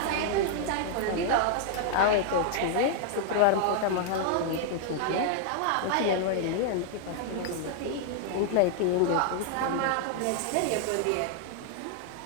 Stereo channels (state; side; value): different; both; correlation 0.00